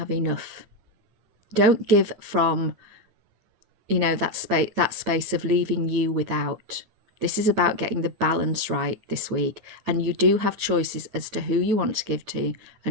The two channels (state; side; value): late; left; 9.2 ms